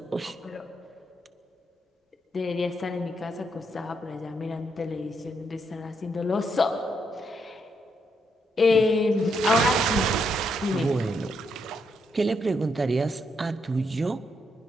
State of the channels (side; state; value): both; normal; correlation 0.78